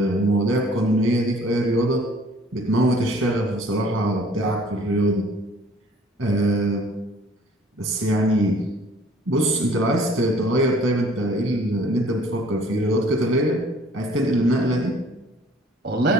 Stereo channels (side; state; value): both; normal; correlation 0.55